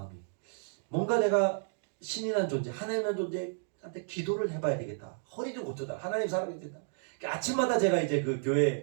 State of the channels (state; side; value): silent; left; digital silence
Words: 뭔가 내가 신이란 존재, 하나님이란 존재한테 기도를 해봐야 되겠다. 허리 좀 고쳐다. 하나님 사랑해야 된다. 아침마다 제가 이제 그